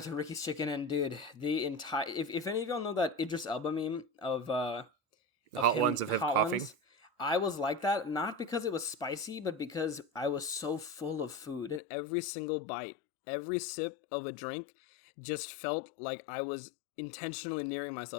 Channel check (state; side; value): drops out; right; at 11.8 s